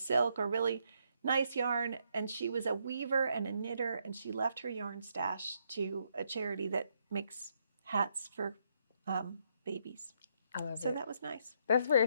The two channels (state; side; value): inverted; both; correlation -0.74